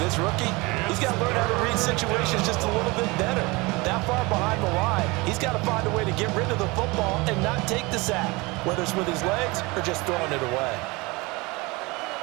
rookie. He's got to learn how to read situations just a little bit better. That far behind the line, he's got to find a way to get rid of the football and not take the sack, whether it's with his legs or just throwing it away.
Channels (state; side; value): quieter; left; 24.6 dB